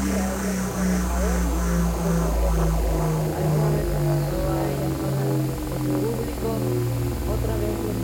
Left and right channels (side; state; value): both; identical; correlation 1.00